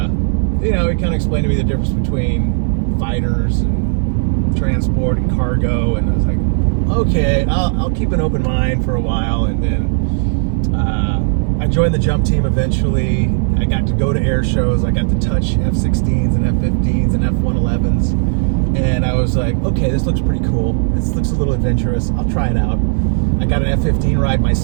he kind of explained to me the difference between fighters and transport and cargo. And I was like, okay, I'll keep an open mind for a while. And then I joined the jump team eventually. I got to go to air shows. I got to touch F-16s and F-15s and F-111s. And I was like, okay, this looks pretty cool. This looks a little adventurous. I'll try it out. I got an F-15 ride my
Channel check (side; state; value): left; silent; 69 dB below the other